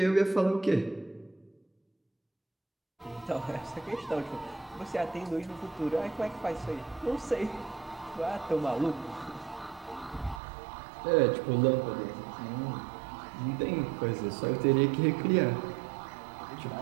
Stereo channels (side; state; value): left; drops out; at 10.4 s